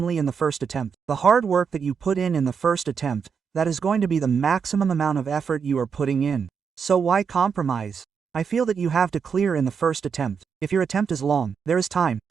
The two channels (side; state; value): left; quieter; 6.4 dB